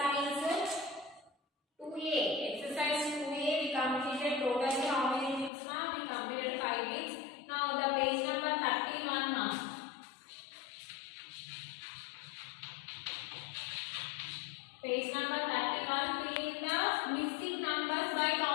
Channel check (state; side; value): drops out; right; at 5.5 s